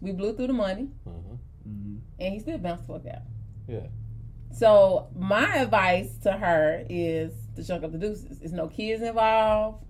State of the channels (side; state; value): both; identical; correlation 1.00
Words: We blew through the money, and he still bounced the fuck out. Yeah. So my advice to her is to chunk up the deuces. There's no kids involved.